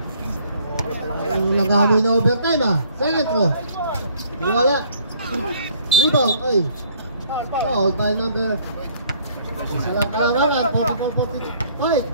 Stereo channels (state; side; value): inverted; both; correlation -0.60